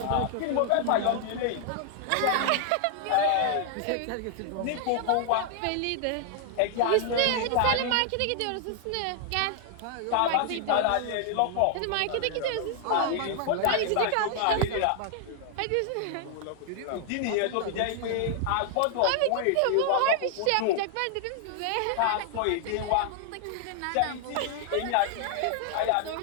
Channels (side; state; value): both; different; correlation 0.00